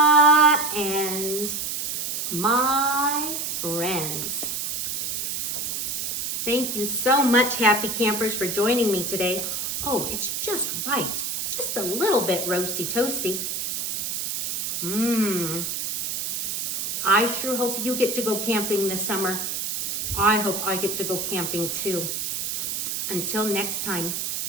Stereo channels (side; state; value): right; noise; hiss, 2 dB below the sound